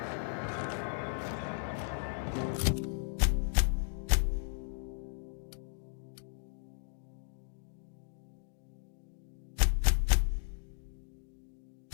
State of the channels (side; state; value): right; silent; digital silence